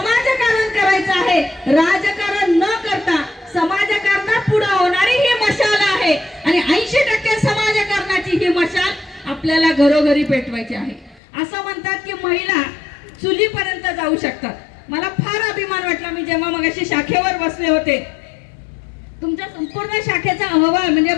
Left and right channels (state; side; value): drops out; right; at 11.2 s